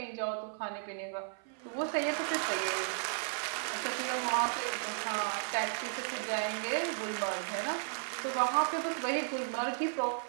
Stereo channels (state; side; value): silent; left; 55 dB below the other